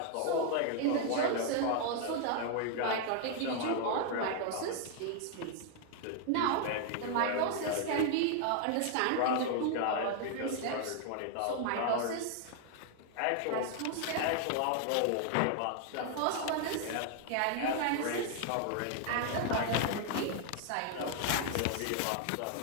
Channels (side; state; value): both; different; correlation 0.00